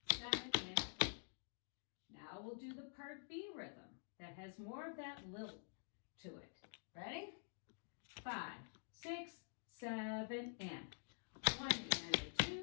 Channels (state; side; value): silent; right; digital silence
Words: 7 and a 8. Now we'll do the part B rhythm that has more of that lilt to it. Ready? 5, 6, 7, and 1